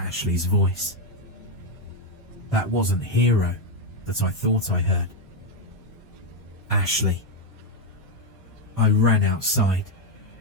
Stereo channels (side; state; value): both; normal; correlation 0.03